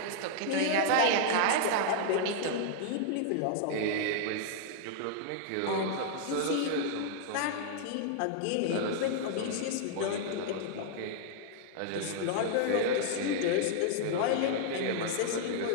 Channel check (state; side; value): different; both; correlation -0.01